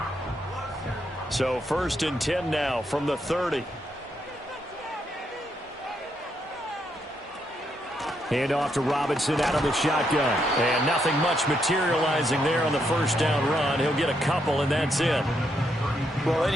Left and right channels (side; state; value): both; normal; correlation 0.78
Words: So 1st and 10 now from the 30. Hand off to Robinson out of the shotgun. And nothing much materializing there on the 1st down run. He'll get a couple, and that's it. Well,